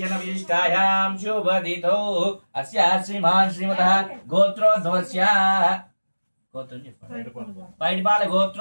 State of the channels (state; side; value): inverted; both; correlation -1.00